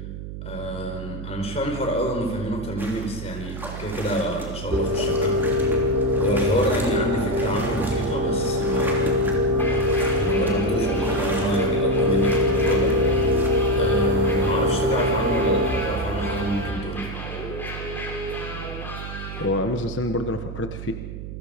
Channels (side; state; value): right; noise; hum, 9 dB below the sound